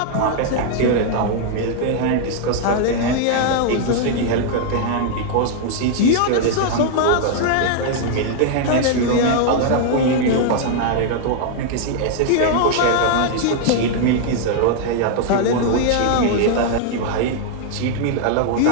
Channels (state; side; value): different; both; correlation 0.00